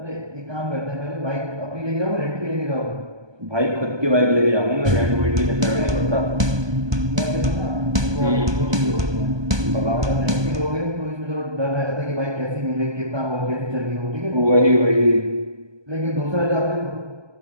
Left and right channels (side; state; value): left; late; 1.2 ms